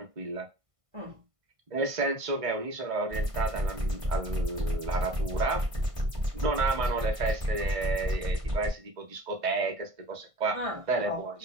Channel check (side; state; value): left; late; 1.5 ms